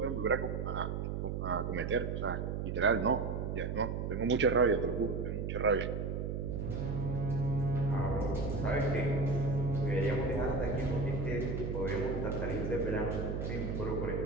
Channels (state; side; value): noise; right; hum, 2 dB below the sound